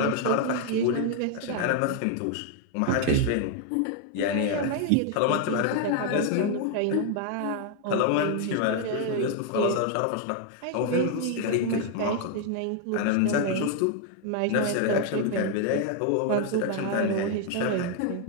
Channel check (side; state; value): both; different; correlation 0.00